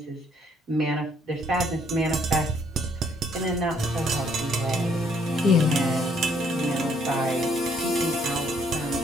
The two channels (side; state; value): both; normal; correlation 0.67